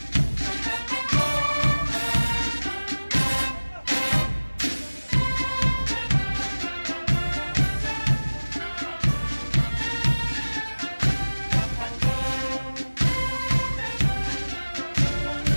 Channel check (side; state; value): both; inverted; correlation -1.00